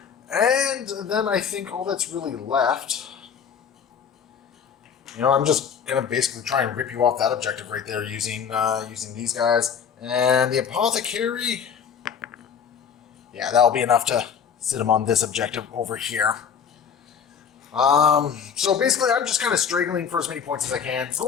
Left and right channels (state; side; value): quieter; right; 7.3 dB